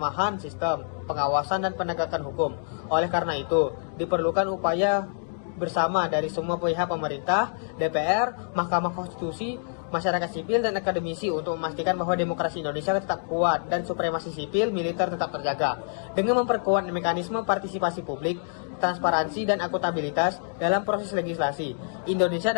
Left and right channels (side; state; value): right; silent; digital silence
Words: sistem pengawasan dan penegakan hukum. Oleh karena itu, diperlukan upaya bersama dari semua pihak pemerintah, DPR, Mahkamah Konstitusi, masyarakat sipil, dan akademisi untuk memastikan bahwa demokrasi Indonesia tetap kuat dan supremasi sipil militer tetap terjaga. Dengan memperkuat mekanisme partisipasi publik, transparansi, dan akuntabilitas dalam proses legislasi, Indonesia